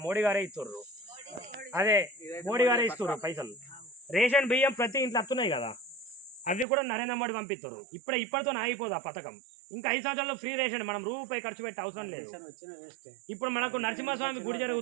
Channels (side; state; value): left; drops out; at 6.7 s